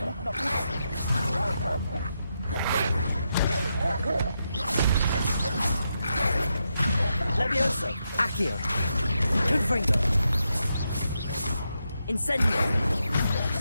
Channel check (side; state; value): both; inverted; correlation -0.84